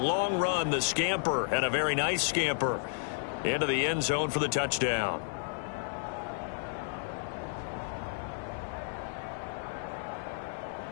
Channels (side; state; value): right; silent; 56 dB below the other